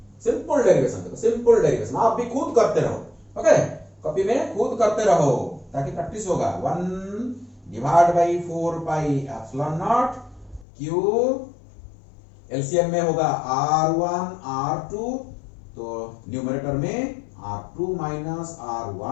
सिंपल डेरिवेशन, देखो सिंपल डेरिवेशन आप भी खुद करते रहो, ओके, कॉपी में खुद करते रहो ताकि प्रैक्टिस होगा। 1 divide by 4 pi epsilon naught Q, LCM में होगा R1 R2, तो न्यूमरेटर में R2 माइनस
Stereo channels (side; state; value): right; drops out; at 10.7 s